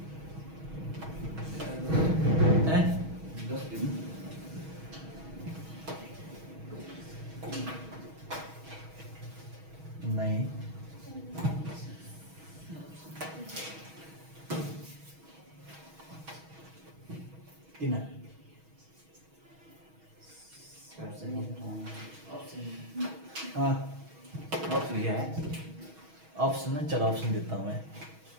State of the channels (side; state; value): left; late; 6.3 ms